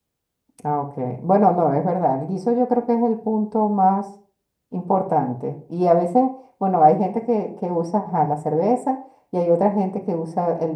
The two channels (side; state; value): both; identical; correlation 1.00